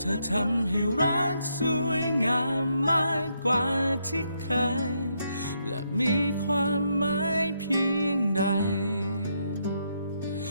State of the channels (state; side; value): inverted; both; correlation -0.78